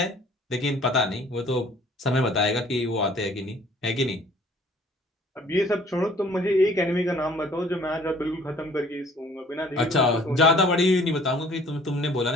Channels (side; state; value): both; normal; correlation 0.54